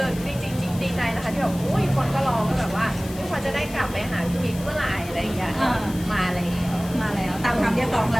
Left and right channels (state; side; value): noise; left; hiss, 16 dB below the sound